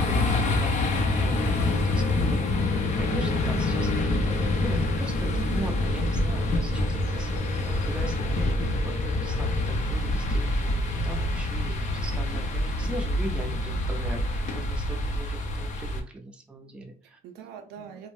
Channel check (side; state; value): both; normal; correlation 0.66